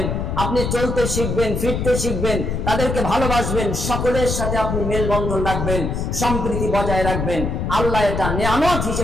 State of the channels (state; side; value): noise; left; rumble, 2 dB below the sound